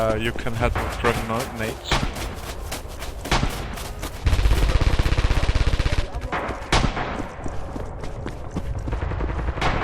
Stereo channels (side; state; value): both; identical; correlation 1.00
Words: You can head with grenades.